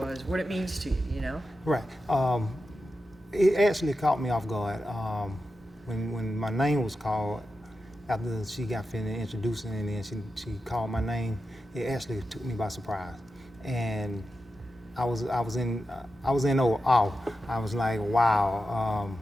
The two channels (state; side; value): normal; both; correlation 0.90